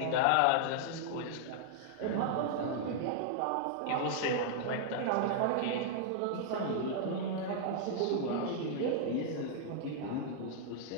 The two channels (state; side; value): different; both; correlation -0.01